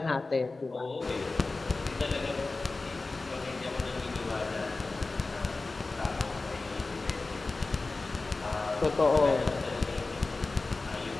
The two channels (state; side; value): quieter; right; 3.5 dB